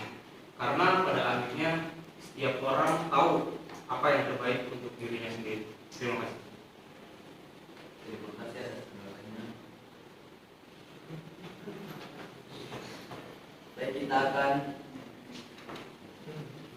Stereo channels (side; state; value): both; identical; correlation 1.00